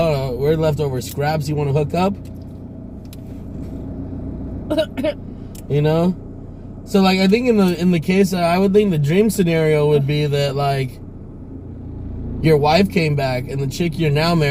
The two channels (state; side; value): identical; both; correlation 1.00